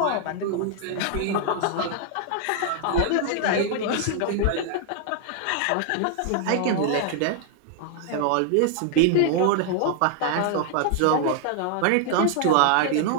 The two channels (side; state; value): both; different; correlation 0.00